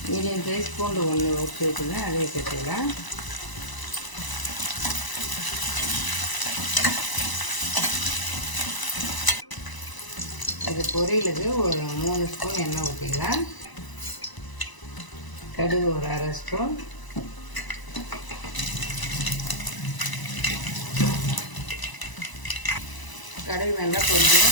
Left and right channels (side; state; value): right; late; 1.0 ms